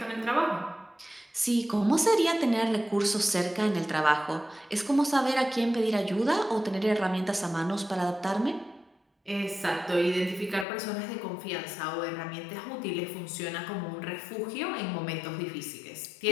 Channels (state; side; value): drops out; right; at 10.7 s